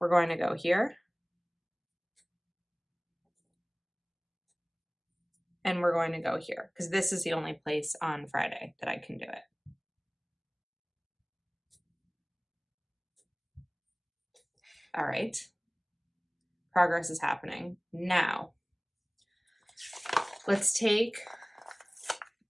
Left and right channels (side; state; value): both; identical; correlation 1.00